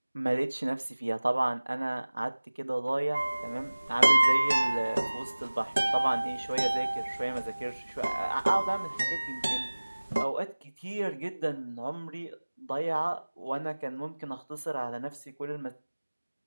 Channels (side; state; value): both; inverted; correlation -1.00